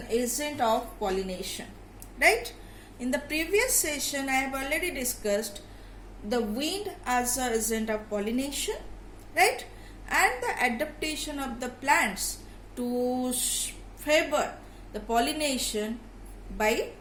agent of pollination. Right? In the previous session I have already discussed the wind as an agent of pollination, right? And the adaptation of the plants to favor the pollination by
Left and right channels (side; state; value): both; identical; correlation 1.00